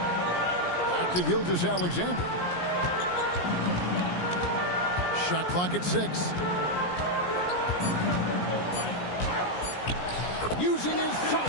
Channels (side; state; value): right; late; 17 ms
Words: Back to Gilgeous-Alexander. Shot clock at 6. Using his